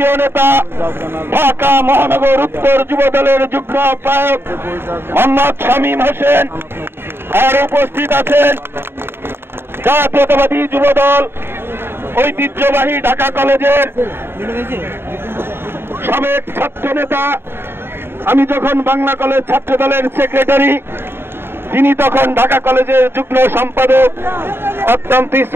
নেতা ঢাকা মহানগর উত্তর যুবদলের যুগ্ম আহ্বায়ক মোহাম্মদ শামীম হোসেন। আর উপস্থিত আছেন জাতীয়তাবাদী যুবদল ঐতিহ্যবাহী ঢাকা কলেজের সাবেক ছাত্র নেতা, আমি যখন বাংলা কলেজ ছাত্র দলের সেক্রেটারি, তিনি তখন ঢাকা কলেজের যুগ্ম সম্পাদক, অত্যন্ত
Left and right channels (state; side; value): late; left; 0.11 ms